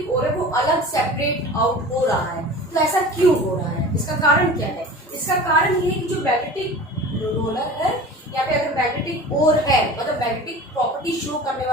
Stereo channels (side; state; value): both; normal; correlation 0.38